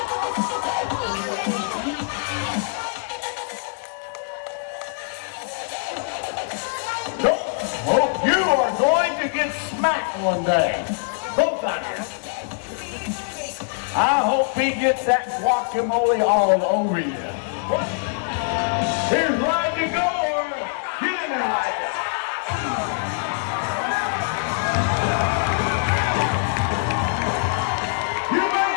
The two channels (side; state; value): right; silent; 63 dB below the other